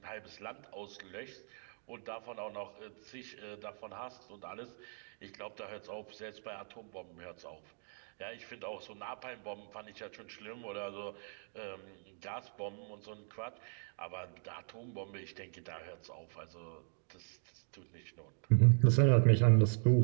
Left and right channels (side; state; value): left; silent; 52 dB below the other